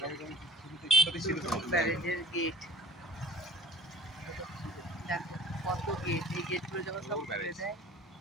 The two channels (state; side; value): normal; both; correlation 0.46